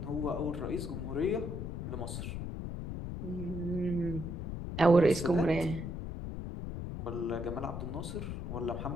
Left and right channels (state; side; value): noise; left; rumble, 5 dB below the sound